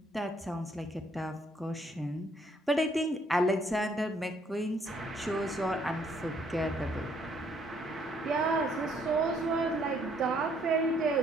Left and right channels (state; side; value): normal; both; correlation 0.67